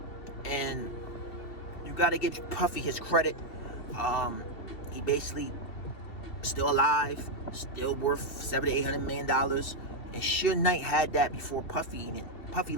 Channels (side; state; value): right; late; 2.7 ms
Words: And you gotta give Puffy his credit. He basically still alive, still worth $700-800 million. And Suge Knight had that before Puffy. And Puffy